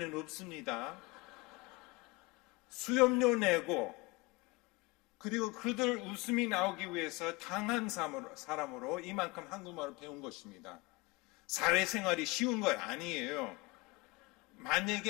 없습니다. 수염료 내고, 그리고 그들 웃음이 나오기 위해서 당한 사람으로 이만큼 한국말을 배운 것입니다. 사회생활이 쉬운 거 아니에요.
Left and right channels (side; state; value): right; quieter; 24.4 dB